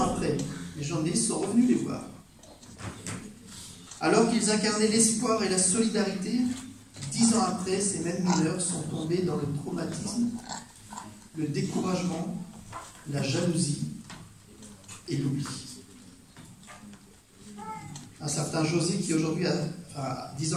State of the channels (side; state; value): both; identical; correlation 1.00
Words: après, les journalistes sont revenus les voir. Alors qu'ils incarnaient l'espoir et la solidarité, 10 ans après, ces mêmes mineurs sont tombés dans le traumatisme, le découragement, la jalousie et l'oubli. Un certain José, qui aujourd'hui, 10